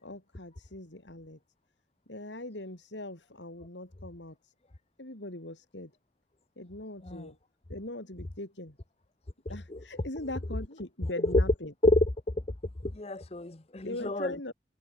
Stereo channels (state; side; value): normal; both; correlation 0.54